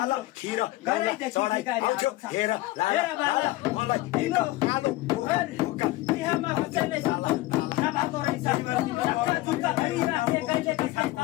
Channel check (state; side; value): quieter; right; 18.4 dB